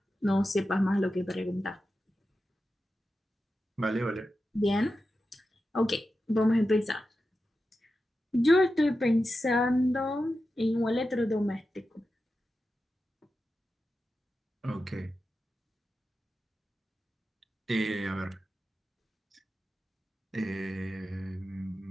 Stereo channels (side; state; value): both; normal; correlation 0.91